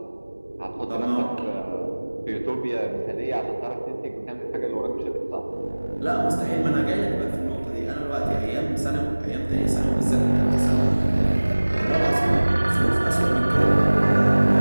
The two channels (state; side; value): inverted; both; correlation -1.00